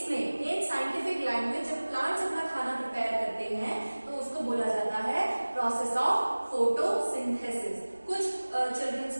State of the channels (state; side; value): inverted; both; correlation -1.00